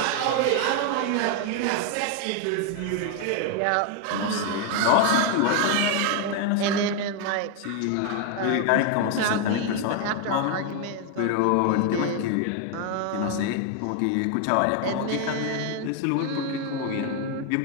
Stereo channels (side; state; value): both; different; correlation 0.01